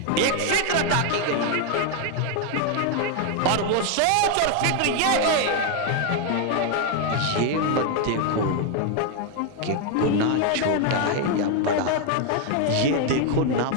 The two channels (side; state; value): both; different; correlation 0.01